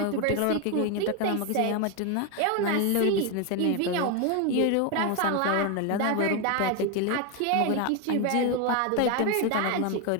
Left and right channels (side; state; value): both; different; correlation 0.02